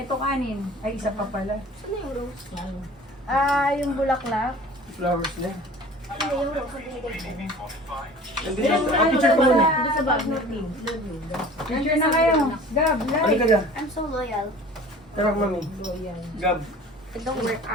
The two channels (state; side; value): normal; both; correlation 0.44